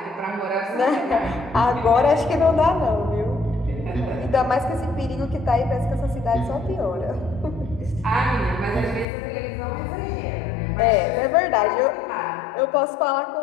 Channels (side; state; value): right; drops out; at 9.1 s